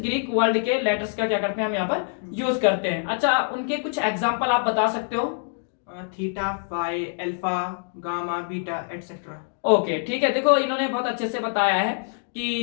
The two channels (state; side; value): silent; right; digital silence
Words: वर्ड के लेटर्स का क्या करते हैं हम यहाँ पर यूज करते हैं। अच्छा, उनके कुछ एग्जांपल आप बता सकते हो? Theta, pi, alpha, gamma, beta etcetera. Okay ठीक है, देखो इन्होंने बहुत अच्छे से बताया है